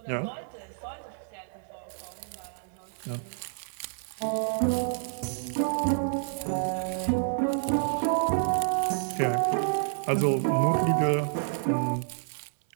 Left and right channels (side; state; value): left; silent; 59 dB below the other